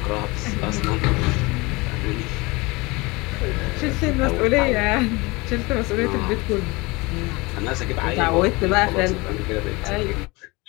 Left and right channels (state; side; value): quieter; right; 24.3 dB